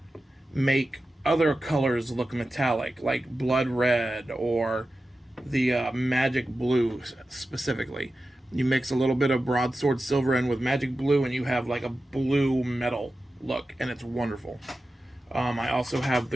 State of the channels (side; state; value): both; normal; correlation 0.93